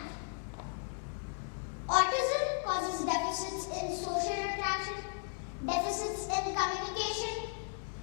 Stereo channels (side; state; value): right; silent; 54 dB below the other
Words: Autism causes deficits in social interaction, deficits in communication,